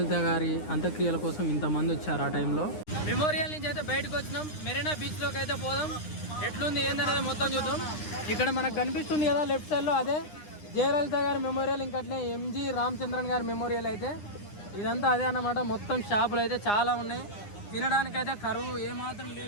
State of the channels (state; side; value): late; right; 9.8 ms